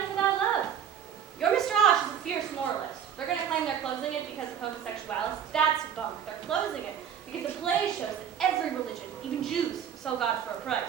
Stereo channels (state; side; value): quieter; left; 8.7 dB